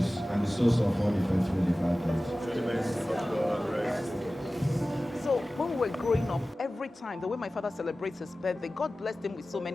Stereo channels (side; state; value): both; normal; correlation 0.96